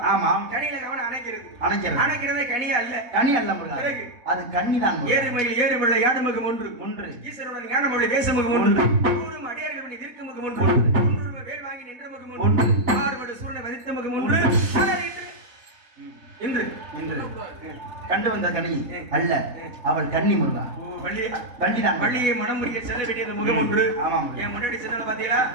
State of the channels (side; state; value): left; late; 4.1 ms